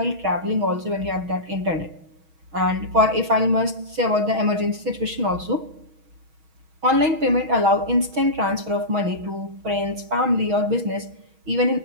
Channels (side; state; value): left; late; 6.3 ms